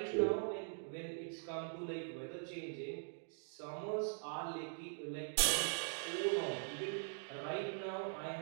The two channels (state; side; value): silent; left; digital silence